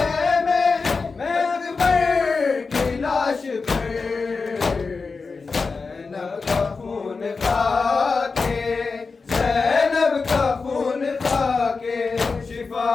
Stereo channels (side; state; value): right; quieter; 4.4 dB